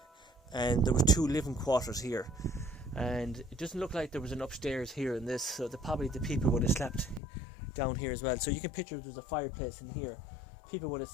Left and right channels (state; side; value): drops out; right; at 7.2 s